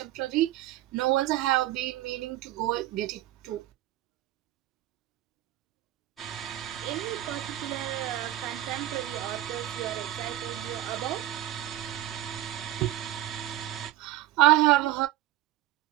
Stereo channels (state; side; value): quieter; left; 14.6 dB